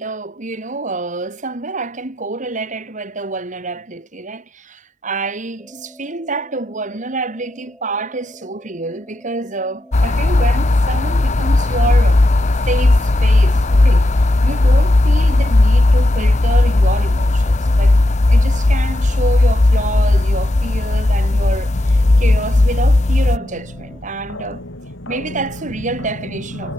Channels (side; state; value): both; normal; correlation 0.86